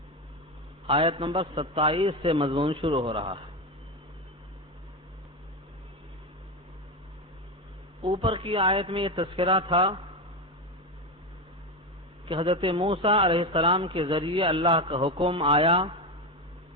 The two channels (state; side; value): normal; both; correlation 0.15